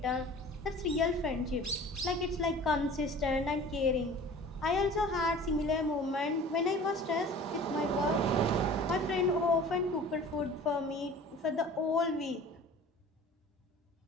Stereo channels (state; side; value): normal; both; correlation 0.43